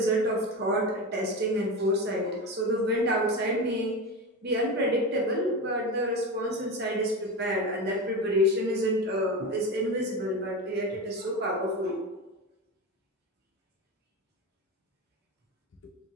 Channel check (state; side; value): normal; both; correlation 0.22